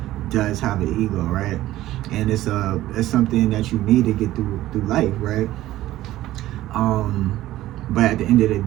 does have an ego, right? And it's something that you need to get through life, right? But at the end of the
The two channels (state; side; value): quieter; left; 15.1 dB